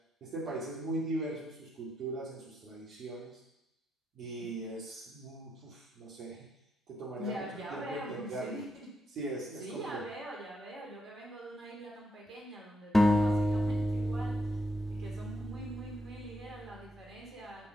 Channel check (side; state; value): both; normal; correlation 0.80